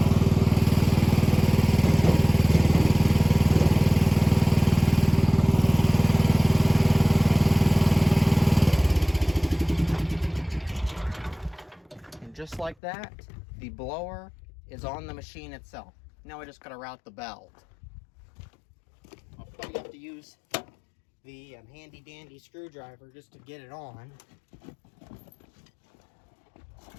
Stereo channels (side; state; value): right; drops out; at 12.8 s